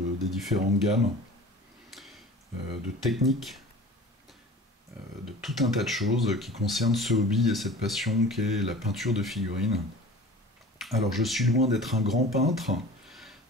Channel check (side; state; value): both; normal; correlation 0.40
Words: différentes gammes, de techniques, de tout un tas de choses qui concernent ce hobby et cette passion qu'est la peinture de figurines. Alors je suis loin d'être un grand peintre,